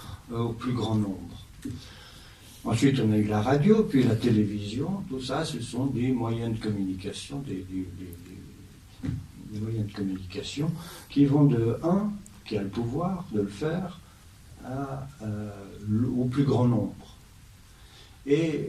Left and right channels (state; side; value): identical; both; correlation 1.00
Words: au plus grand nombre. Ensuite, on a eu la radio, puis la télévision. Tout ça, ce sont des moyens de communication, des moyens de communication qui vont de un, qui a le pouvoir de le faire, à plus grand nombre.